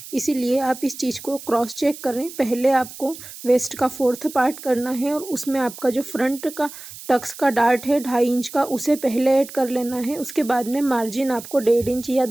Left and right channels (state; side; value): noise; right; hiss, 14 dB below the sound